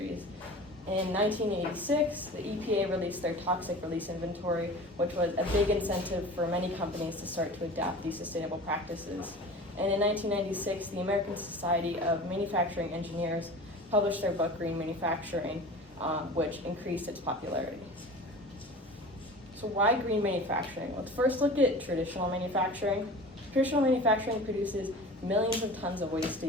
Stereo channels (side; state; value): both; normal; correlation 0.37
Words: In 1986, the EPA released their toxic release inventory, which was a big incentive for many companies to start to adopt these sustainable practices. And in 1996, the American Society of Manufacturing Engineers published their book, Green Manufacturing, which increased its popularity. So why green manufacturing? Let's first look at traditional manufacturing. Traditional manufacturing produces millions of tons of waste a